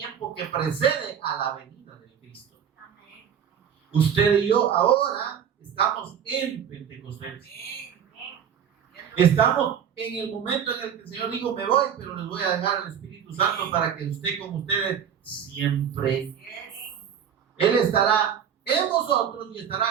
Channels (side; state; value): left; quieter; 8.2 dB